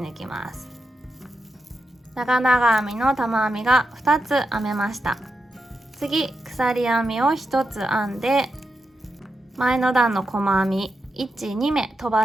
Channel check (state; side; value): normal; both; correlation 0.87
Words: きます。長々編みの玉編みが2つ編めました。次、鎖編みを1つ編んで、前の段の細編み1、2目飛